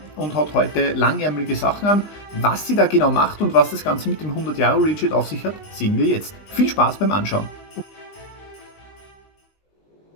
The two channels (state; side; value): late; right; 20 ms